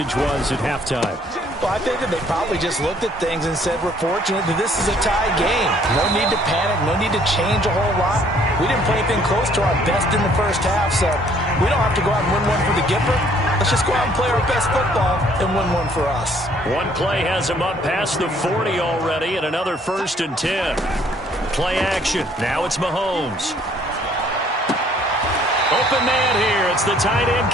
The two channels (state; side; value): normal; both; correlation 0.61